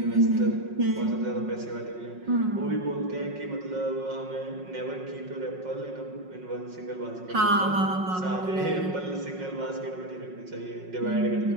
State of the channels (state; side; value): late; left; 5.5 ms